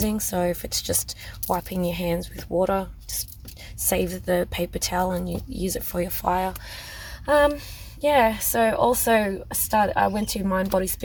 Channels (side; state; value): both; identical; correlation 1.00